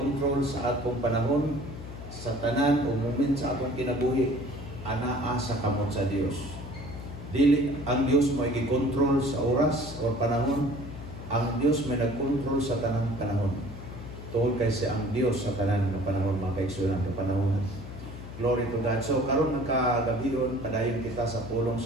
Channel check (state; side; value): noise; left; hum, 11 dB below the sound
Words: sa atong panahon, sa tanan o moment sa atong kinabuhi, anaa sa kamot sa Dios. Dili ang Dios mo i-control sa oras o panahon, ang Dios may nag-control sa tanang panahon. Tungkol kay siya ang Dios sa tanan ng panahon, mga kaigsunan ng panahon. Glory to God. So, karon nagkagabion, padayon kita sa pulong